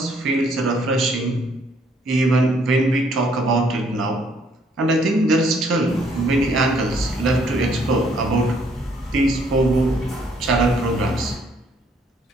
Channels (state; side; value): normal; both; correlation 0.66